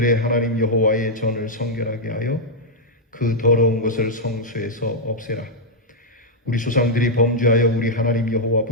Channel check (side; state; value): both; normal; correlation -0.03